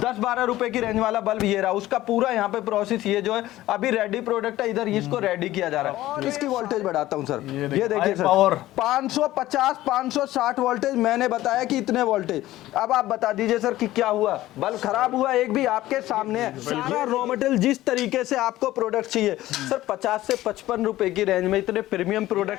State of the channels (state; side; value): quieter; right; 15.6 dB